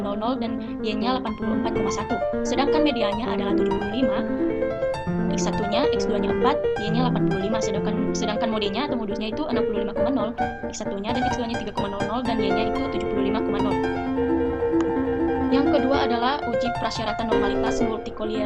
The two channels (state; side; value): identical; both; correlation 1.00